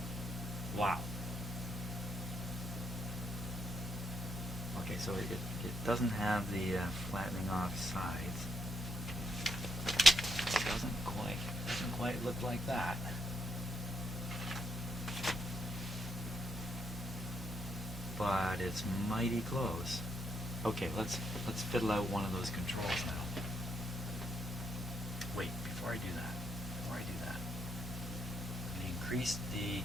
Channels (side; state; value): both; normal; correlation 0.77